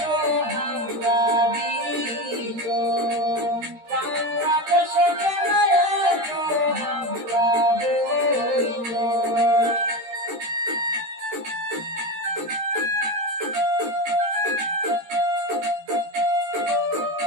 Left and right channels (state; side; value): late; left; 13 ms